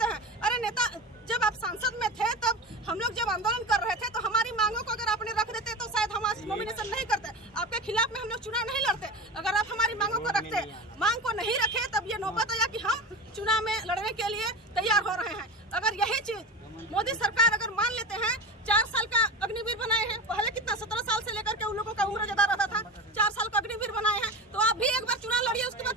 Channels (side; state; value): both; normal; correlation 0.26